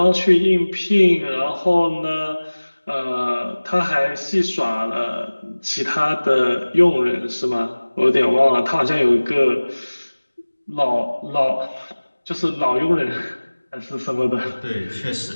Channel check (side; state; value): both; inverted; correlation -1.00